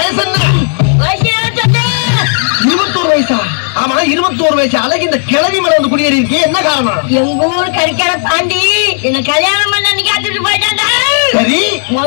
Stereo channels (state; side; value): silent; right; 57 dB below the other